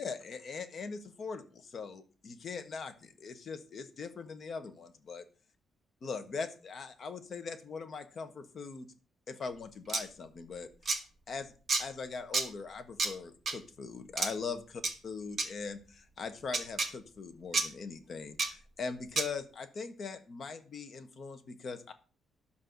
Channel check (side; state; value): both; normal; correlation 0.74